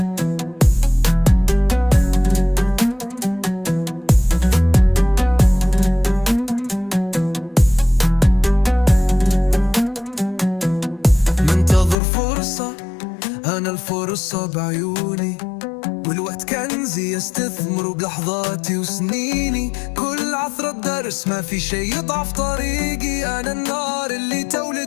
أنا الفرصة بعيوني، والوقت كنزي استثمره بلحظاتي وسنيني. كل عثرة درس ما في شي يضعف طريقي، أنا النار اللي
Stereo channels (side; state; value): right; drops out; at 12.0 s